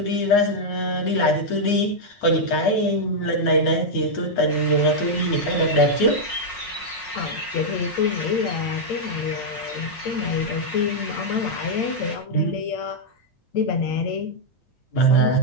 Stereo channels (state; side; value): late; right; 5.5 ms